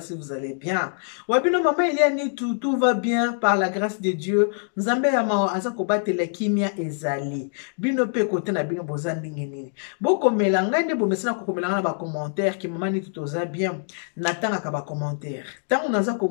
si vous allez bien. Wabino mama ile anitu, tout va bien par la grâce de Dieu. Nzambe ya mao aza kobatela kimia ezali. Bino pe kote na bino boza ndenge nini. Boko melanga nde bomesana kokomelanga na ba commentaire ki mama nitu toza bien. Natanga ka ba commentaire. Tango naza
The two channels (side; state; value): right; silent; digital silence